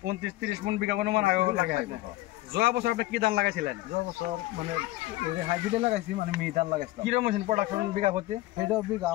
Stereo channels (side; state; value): right; quieter; 17.7 dB